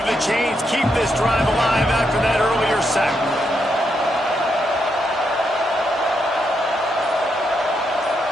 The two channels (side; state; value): both; normal; correlation 0.80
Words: the chains, keep this drive alive after that earlier sack.